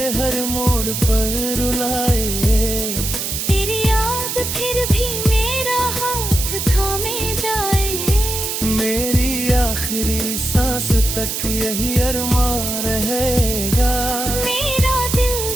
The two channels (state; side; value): noise; right; hiss, 3 dB below the sound